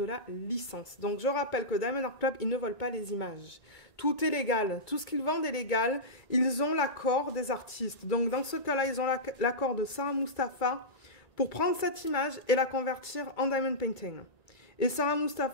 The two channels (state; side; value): late; right; 1.9 ms